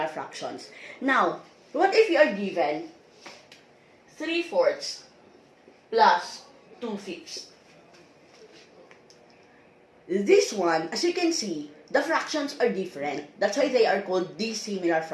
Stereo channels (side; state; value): both; identical; correlation 1.00